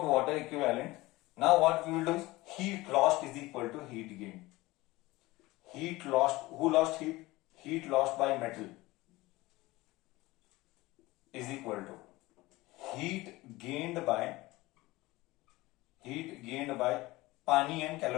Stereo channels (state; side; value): quieter; right; 20.0 dB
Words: water equivalent. Now what we will do is heat lost is equal to heat gain. Heat lost, who lost heat? Heat lost by metal is equal to heat gained by पानी and